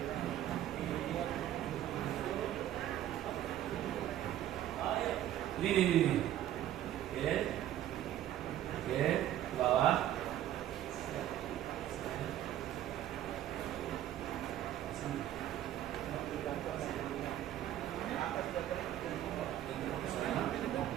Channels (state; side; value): quieter; left; 12.2 dB